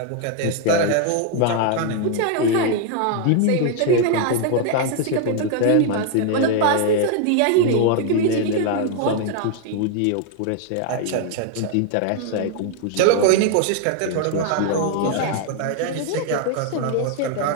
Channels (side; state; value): both; different; correlation 0.00